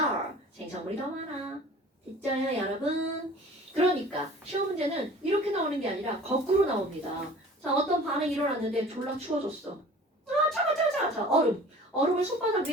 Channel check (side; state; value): both; normal; correlation 0.45